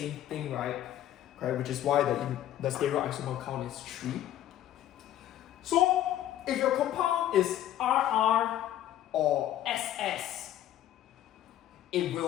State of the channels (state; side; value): quieter; right; 12.3 dB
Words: thing, right? Okay, which is why the stereoisomer count is 3. So, if your compound is RR or SS, it